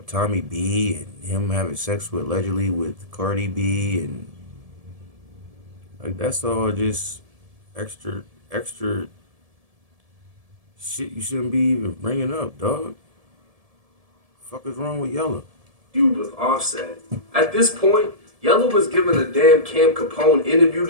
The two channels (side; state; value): left; late; 1.7 ms